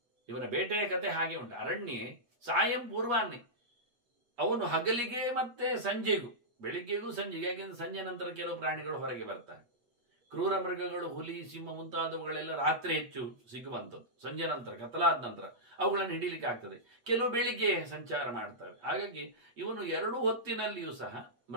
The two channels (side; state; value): left; late; 8.4 ms